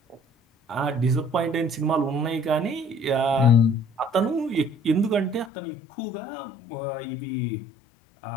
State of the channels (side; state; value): right; drops out; at 5.5 s